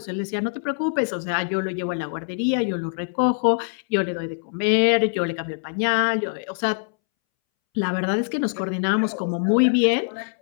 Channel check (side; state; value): right; silent; 63 dB below the other